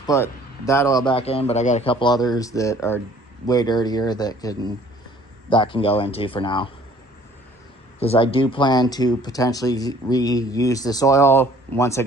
put that oil back in, but I got a couple others that are way dirtier that can go into for now. Because I do plan to potentially reuse this oil once I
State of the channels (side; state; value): both; normal; correlation 0.54